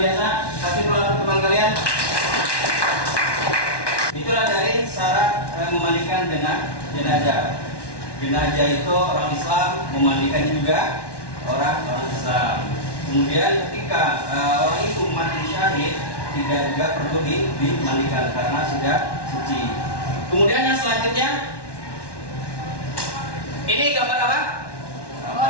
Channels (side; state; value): right; late; 1.1 ms